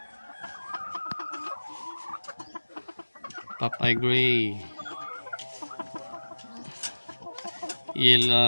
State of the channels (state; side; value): inverted; both; correlation -1.00